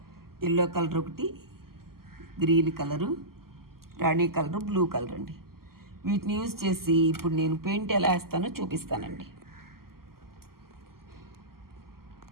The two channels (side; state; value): left; late; 0.93 ms